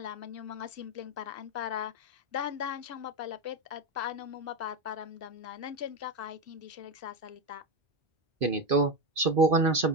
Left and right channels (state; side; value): late; left; 2.5 ms